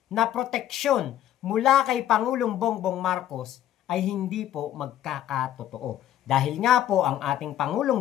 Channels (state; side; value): quieter; right; 11.8 dB